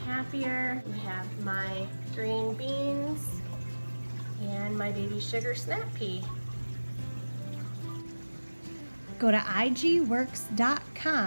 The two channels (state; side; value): inverted; both; correlation -1.00